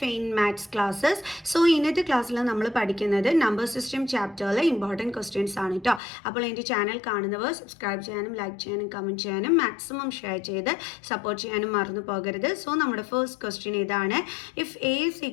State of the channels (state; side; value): drops out; right; at 6.0 s